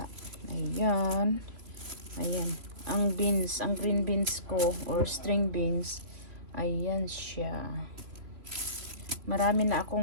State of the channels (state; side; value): late; left; 2.9 ms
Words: Ayan. Ang green beans ko or string beans. Ayan siya. Marami na